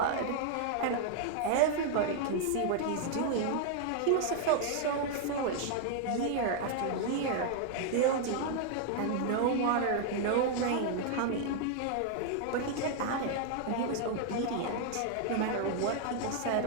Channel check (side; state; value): both; different; correlation 0.00